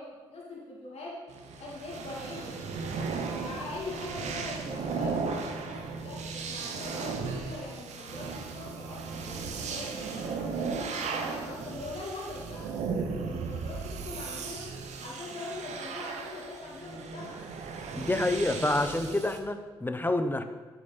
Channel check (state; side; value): normal; both; correlation 0.60